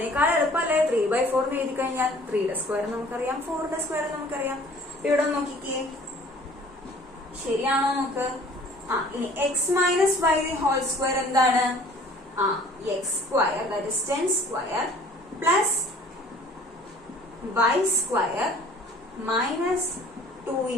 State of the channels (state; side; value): normal; both; correlation 0.51